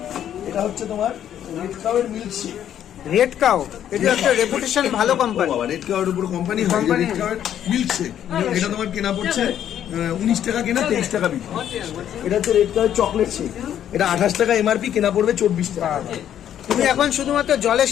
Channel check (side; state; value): right; quieter; 10.3 dB